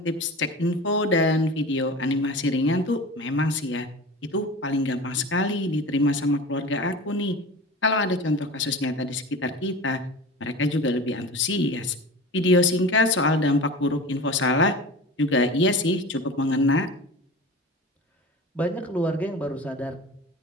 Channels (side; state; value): both; normal; correlation 0.34